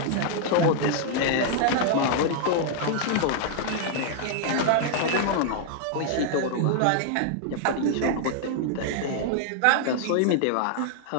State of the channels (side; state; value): both; different; correlation -0.01